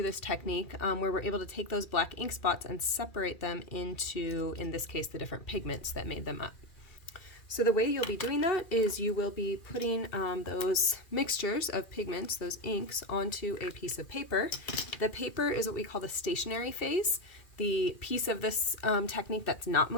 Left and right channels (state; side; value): late; right; 2.4 ms